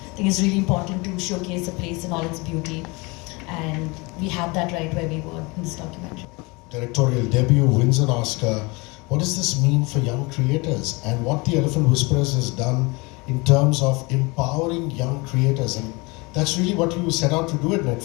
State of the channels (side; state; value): right; quieter; 26.4 dB